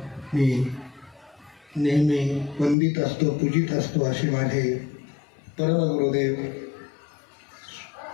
मी नेहमी वंदित असतो पूजित असतो असे माझे परमगुरुदेव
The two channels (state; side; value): drops out; right; at 2.8 s